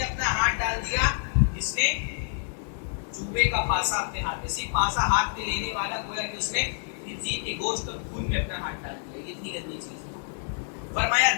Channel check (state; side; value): silent; right; digital silence